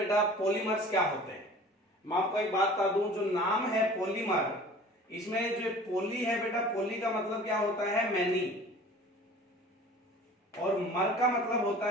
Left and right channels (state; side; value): normal; both; correlation 0.44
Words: पॉलीमर्स क्या होते हैं, मैं आपको एक बात बता दूं। जो नाम है पॉलीमर, इसमें जो पॉली है बेटा, पॉली का मतलब क्या होता है? मैनी, और मर का मतलब होता